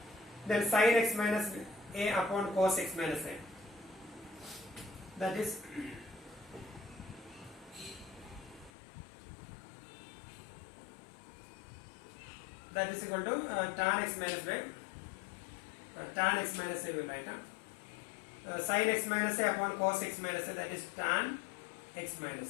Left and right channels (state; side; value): drops out; right; at 8.7 s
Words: Then sin x minus a upon cos x minus a. That is equal to tan x minus b. Tan x minus a will write down. Sin x minus a upon cos x minus a, that is tan x